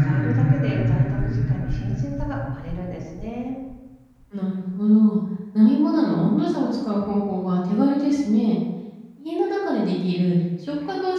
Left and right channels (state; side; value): identical; both; correlation 1.00